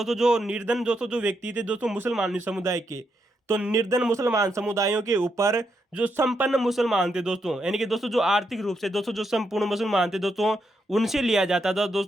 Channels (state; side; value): normal; both; correlation 0.81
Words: जो निर्धन दोस्तों जो व्यक्ति थे दोस्तों मुसलमान समुदाय के, तो निर्धन मुसलमान समुदायों के ऊपर जो संपन्न मुसलमान थे दोस्तों, यानी कि दोस्तों जो आर्थिक रूप से दोस्तों जो संपूर्ण मुसलमान थे दोस्तों, उनसे लिया जाता था